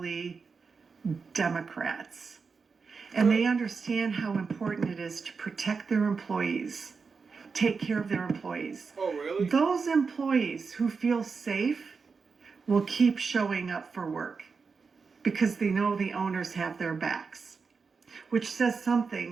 Democrats. And they understand how important it is to protect their employees, take care of their employees. Oh, really? Those employees who feel safe will keep showing up for work because they know the owners have their backs, which says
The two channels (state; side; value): quieter; left; 5.1 dB